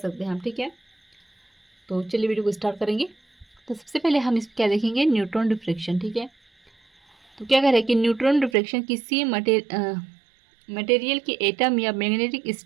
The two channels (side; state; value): left; drops out; at 8.6 s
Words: हैं हम, ठीक है। तो चलिए वीडियो को स्टार्ट करेंगे। तो सबसे पहले हम इस क्या देखेंगे, न्यूट्रॉन डिफ्रेक्शन, ठीक है। तो क्या कह रहे हैं कि न्यूट्रॉन डिफ्रेक्शन किसी मटेरियल के एटम या मैग्नेटिक